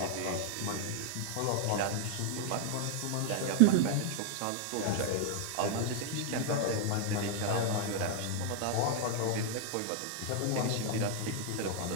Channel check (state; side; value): different; both; correlation 0.00